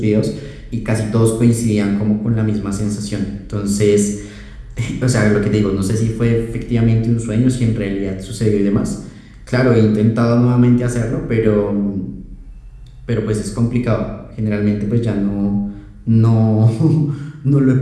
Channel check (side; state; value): both; identical; correlation 1.00